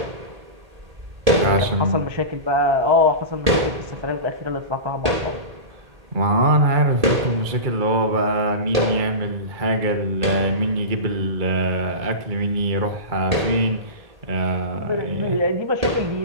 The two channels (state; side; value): late; left; 1.8 ms